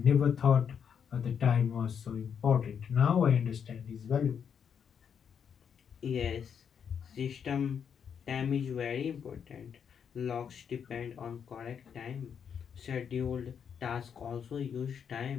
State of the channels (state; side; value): quieter; right; 7.5 dB